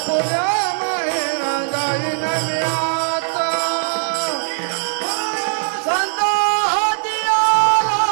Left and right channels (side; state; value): left; silent; 59 dB below the other